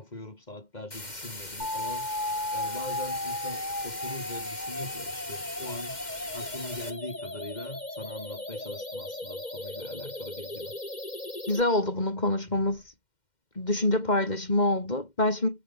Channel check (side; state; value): right; late; 2.1 ms